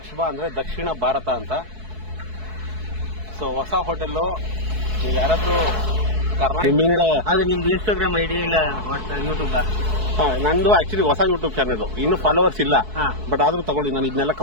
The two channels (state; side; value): late; left; 4.6 ms